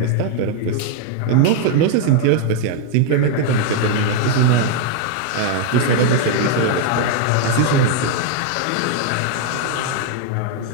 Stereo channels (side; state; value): both; different; correlation 0.00